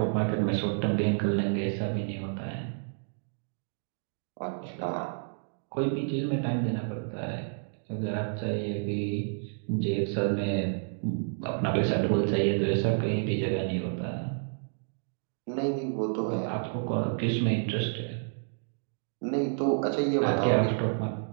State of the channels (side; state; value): left; silent; digital silence